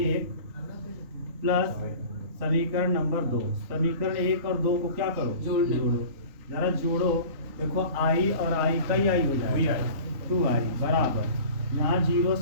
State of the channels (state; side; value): late; left; 3.9 ms